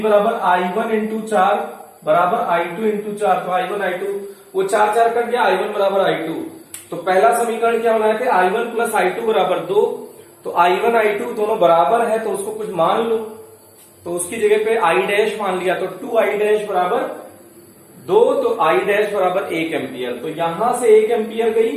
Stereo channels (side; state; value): both; identical; correlation 1.00